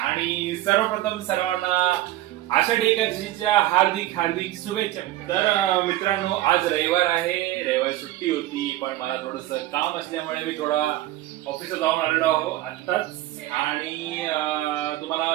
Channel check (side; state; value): left; quieter; 15.4 dB